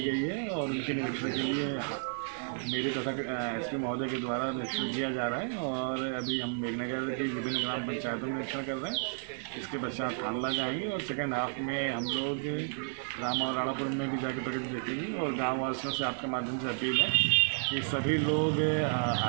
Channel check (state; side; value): silent; left; digital silence